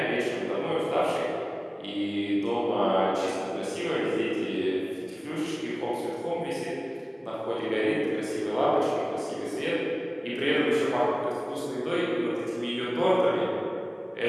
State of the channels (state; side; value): identical; both; correlation 1.00